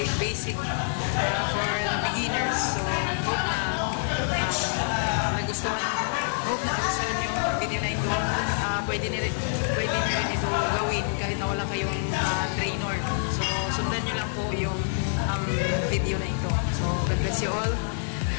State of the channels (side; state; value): right; silent; 60 dB below the other